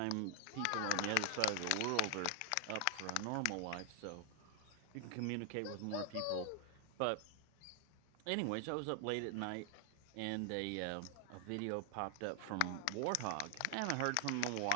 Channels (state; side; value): different; both; correlation 0.00